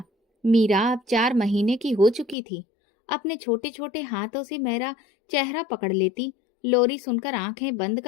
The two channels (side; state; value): right; drops out; at 2.4 s